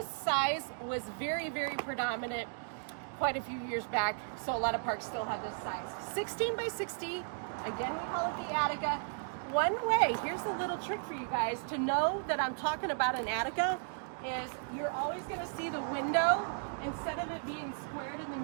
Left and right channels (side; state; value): left; silent; digital silence